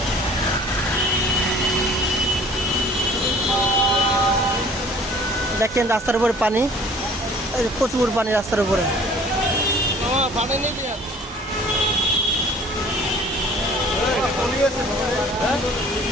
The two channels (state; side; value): normal; both; correlation 0.51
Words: দেখেন রাস্তার উপরে পানি, প্রচুর পানি রাস্তার উপরে।